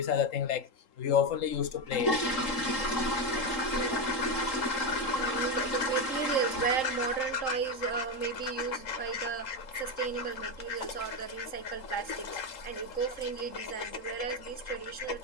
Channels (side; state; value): right; late; 3.8 ms